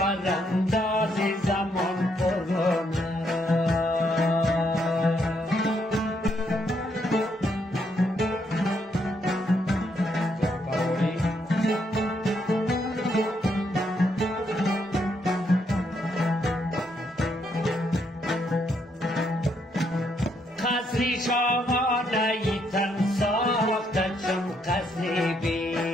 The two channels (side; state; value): both; normal; correlation 0.75